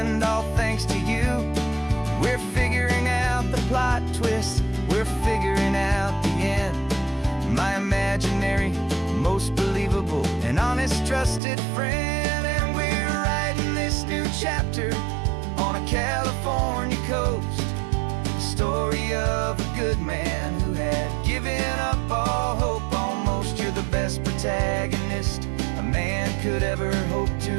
all thanks to you. We're figuring out the plot twist, we're figuring out the end. My imaginary, most believable and honest trusted friend. And we're writing this new chapter on a California coast, the story of a good man who had given up all hope almost. You're the best protagonist a man could ever hope to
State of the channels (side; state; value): left; drops out; at 11.4 s